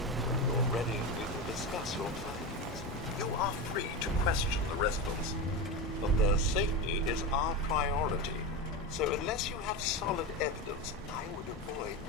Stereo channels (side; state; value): both; normal; correlation 0.19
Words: you're ready, we will discuss your findings. You are free to question the residents, but their safety is our priority. So unless you have solid evidence, I would avoid